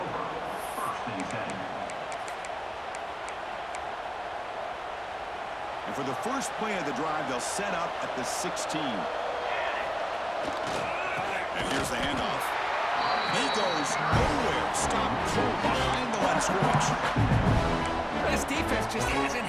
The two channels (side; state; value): both; identical; correlation 1.00